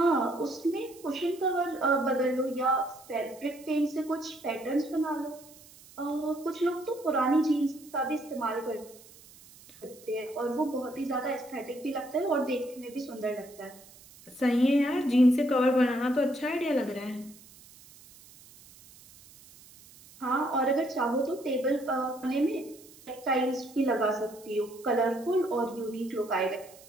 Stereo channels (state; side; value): noise; right; hiss, 22 dB below the sound